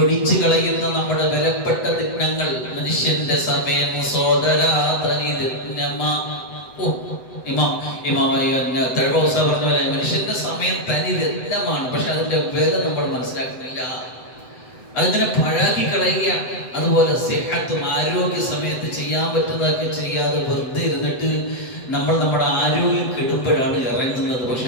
കളയുന്ന നമ്മുടെ വിലപ്പെട്ട ദിനങ്ങൾ. മനുഷ്യന്റെ സമയം തഴവസ പറഞ്ഞ പോലെ മനുഷ്യന്റെ സമയം തനി രത്നമാണ്. പക്ഷെ അതിന്റെ വില നമ്മൾ മനസ്സിലാക്കുന്നില്ല, അതിങ്ങനെ പഴാക്കി കളയുക. അതുപോലെ സിഹത്തും, ആരോഗ്യ സമയത്ത് ചെയ്യാൻ പറ്റുന്നതൊക്കെ ചെയ്യാതെ വെറുതെ ഇരുന്നിട്ട് നമ്മൾ നമ്മുടെ ആരോഗ്യം കെടുമ്പോഴാണ് ഇറങ്ങുന്നത്.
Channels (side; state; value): right; late; 7.9 ms